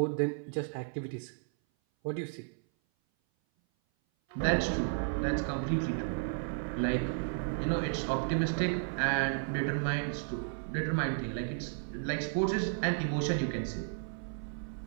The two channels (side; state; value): left; silent; 56 dB below the other